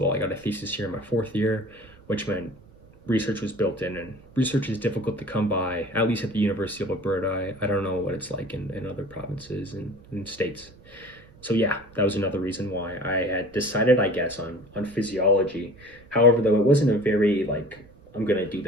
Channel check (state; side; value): noise; right; rumble, 27 dB below the sound